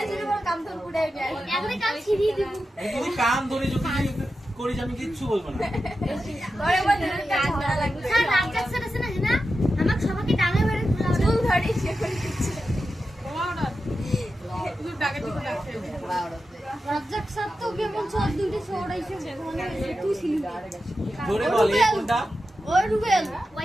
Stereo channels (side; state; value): both; normal; correlation 0.91